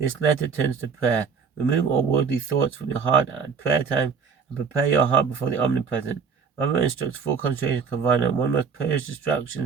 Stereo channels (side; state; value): left; quieter; 5.8 dB